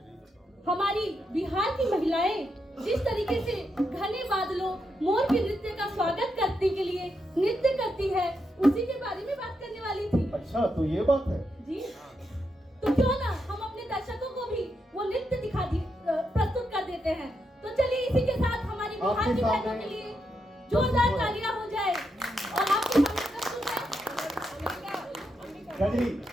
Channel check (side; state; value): both; normal; correlation 0.83